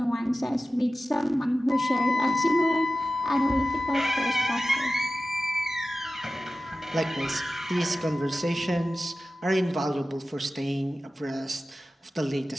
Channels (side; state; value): both; normal; correlation 0.95